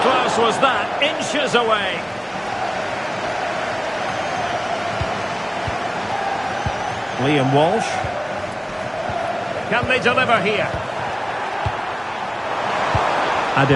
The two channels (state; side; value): identical; both; correlation 1.00